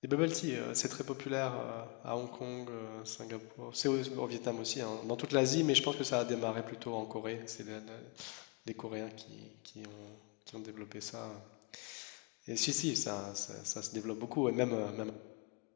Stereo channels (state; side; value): quieter; right; 32.2 dB